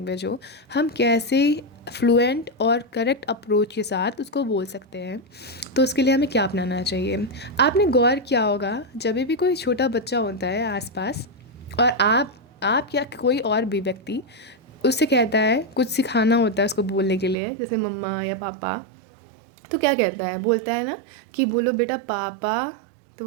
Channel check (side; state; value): left; drops out; at 17.4 s